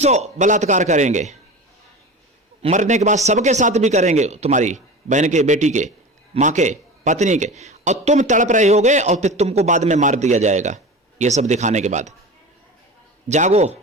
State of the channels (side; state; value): both; normal; correlation 0.31